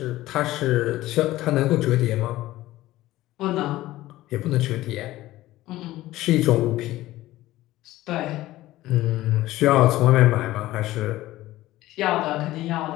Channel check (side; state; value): right; quieter; 16.3 dB